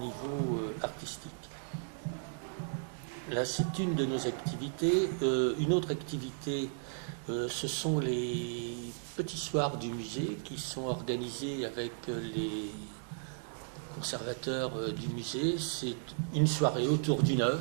artistique. Là, c'est une de nos activités. Une autre activité, ce sont les petits soirs du musée qui sont organisés avec les conservateurs du musée. C'est une soirée autour d'une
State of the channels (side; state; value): left; silent; digital silence